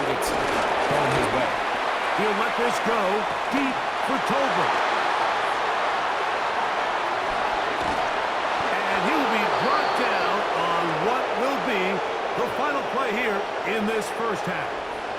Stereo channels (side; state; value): both; identical; correlation 1.00